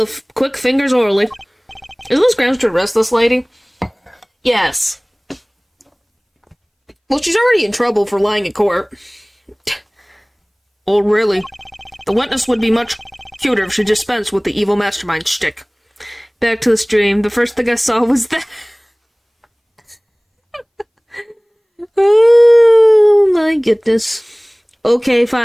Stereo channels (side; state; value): both; identical; correlation 1.00